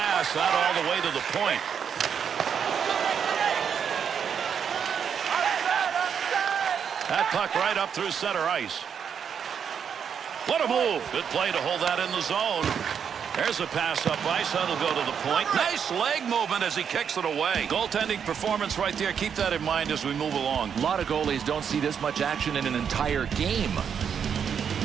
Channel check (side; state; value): left; quieter; 7.5 dB